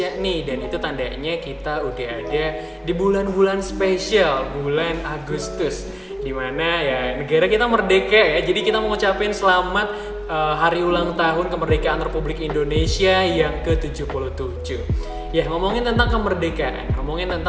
nih, dan itu tandanya kita udah ada di bulan-bulan spesial, bulan Agustus, dimana ya negara kita merdeka ya. Jadi kita mau ngucapin selamat hari ulang tahun kemerdekaan Republik Indonesia yang ke-77. Ya, ngomongin tentang kemerdekaan, ngomongin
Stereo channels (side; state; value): both; identical; correlation 1.00